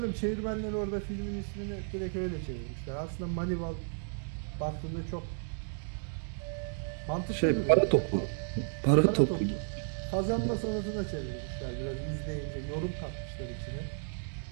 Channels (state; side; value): silent; left; digital silence